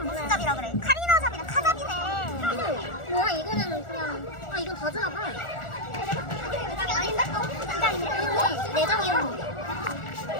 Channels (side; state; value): right; late; 1.4 ms